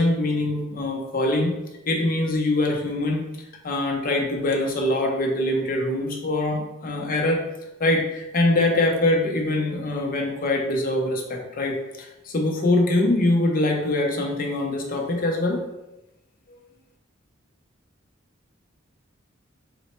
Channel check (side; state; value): both; normal; correlation 0.44